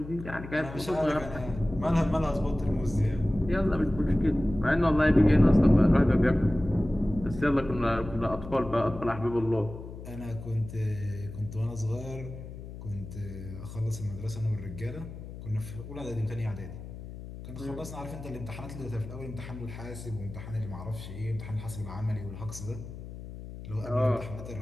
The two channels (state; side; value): noise; left; hum, 12 dB below the sound